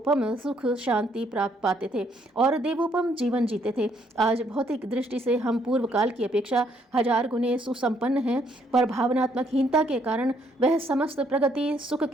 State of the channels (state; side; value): normal; both; correlation 0.69